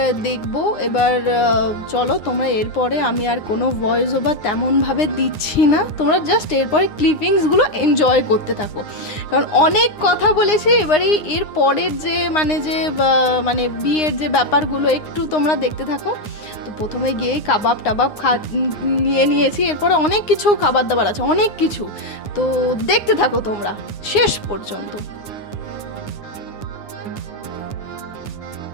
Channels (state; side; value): late; right; 9.7 ms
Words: দেখবো এবার। চলো তোমরা, এরপরে আমি আর কোনো ভয়েস ওভার তেমনভাবে দিচ্ছি না, তোমরা জাস্ট এরপরে ক্লিপিংসগুলো এনজয় করতে থাকো, কারণ অনেক কথা বলেছি। এবারে এর পরের যে মানে বিয়ের যে ব্যাপারগুলো একটু তোমরা দেখতে থাকো। তো প্রথমে গিয়ে কাবাব টাবাব নিয়েছি, এরপরে অনেক কিছু খাবার দাবার আছে, অনেক কিছু। তো দেখতে থাকো তোমরা শেষ পর্যন্ত।